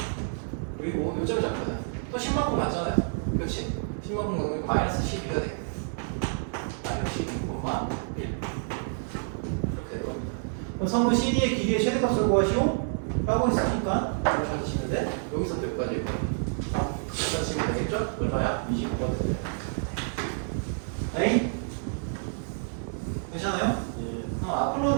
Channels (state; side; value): silent; left; digital silence